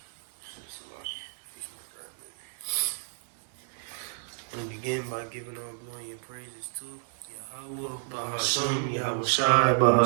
I'm gonna begin by giving all glory and praises to Yahweh, Bahasham, Yahweh Shai,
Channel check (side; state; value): left; silent; 57 dB below the other